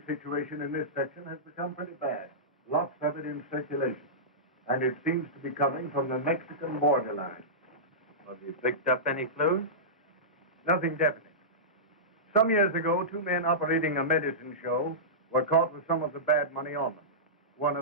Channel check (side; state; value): both; normal; correlation -0.16